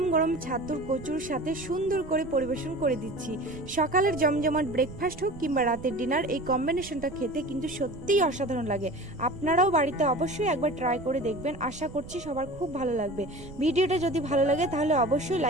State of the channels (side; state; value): right; noise; rumble, 15 dB below the sound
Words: গরম ছাতুর কচুর সাথে সুন্দর করে পরিবেশন করে দিচ্ছি। সকালের জমজমাট ব্রেকফাস্ট হোক কিংবা রাতের ডিনার, এই কম্বিনেশনটা খেতে কিন্তু সত্যিই অসাধারণ লাগে। আপনারাও বাড়িতে অবশ্যই একবার ট্রাই করে দেখবেন। আশা করছি সবার খুব ভালো লাগবে। ভিডিওটা যদি ভালো লাগে তাহলে অবশ্যই